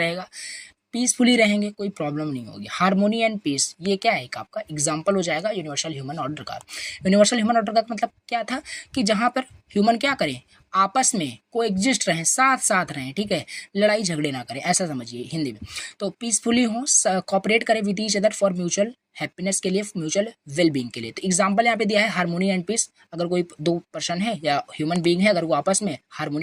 पीसफुली रहेंगे, कोई प्रॉब्लम नहीं होगी। हारमोनी एंड पीस ये क्या है? एक आपका एग्जाम्पल हो जाएगा यूनिवर्सल ह्यूमन ऑर्डर का। यूनिवर्सल ह्यूमन ऑर्डर का मतलब क्या था कि जहाँ पर ह्यूमन क्या करें, आपस में कोएग्जिस्ट रहें, साथ साथ रहें, ठीक है, लड़ाई झगड़े ना करें, ऐसा समझिए हिंदी में। तो पीसफुली हो, कॉपरेट करें with each other for mutual happiness के लिए, म्यूचुअल वेल बीइंग के लिए। तो एग्जाम्पल यहाँ पे दिया है हारमोनी एंड पीस। अगर कोई दो पर्सन है या ह्यूमन बीइंग है, अगर वो आपस में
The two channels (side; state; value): both; identical; correlation 1.00